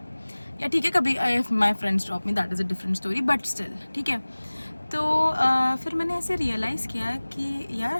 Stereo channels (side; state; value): both; inverted; correlation -1.00